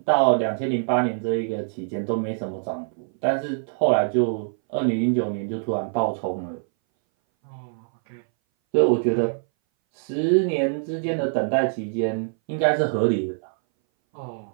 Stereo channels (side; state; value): left; silent; 60 dB below the other